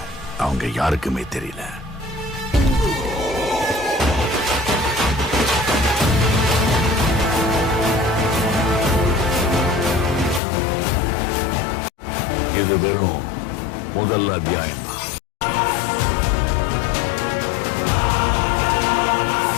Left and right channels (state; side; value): drops out; right; at 10.4 s